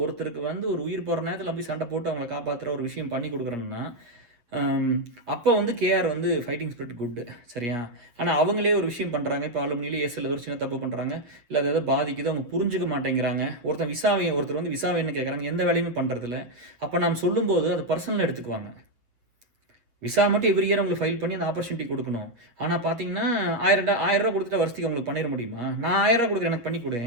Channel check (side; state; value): left; late; 8.3 ms